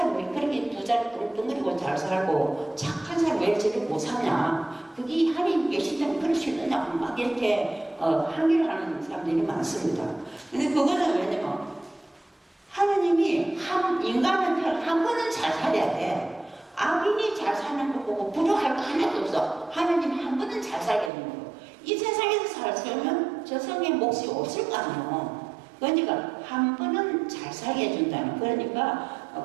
왜 그렇게 두 자리 뚱뚱거리고 잘 살고 착한 사람 왜 저렇게 못 사냐, 그게 하나님 계신다면 그럴 수 있느냐고 막 이렇게 항의를 하는 사람들이 많습니다. 근데 그거는 왜냐면 하나님이 인간은 한 번은 잘 살아야 돼. 악인이 잘 사는 거 보고 부러워할 거 하나도 없어. 하나님이 한 번은 잘 살게 되는 거. 이 세상에서 잘 살면 저 성의 몫이 없을 거 아니에요. 그러니까 한 번은 잘 살게 해준다는.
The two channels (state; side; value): drops out; left; at 21.1 s